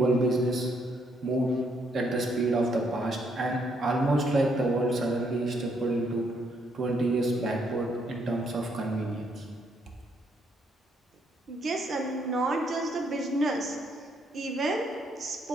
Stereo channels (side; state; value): both; normal; correlation 0.72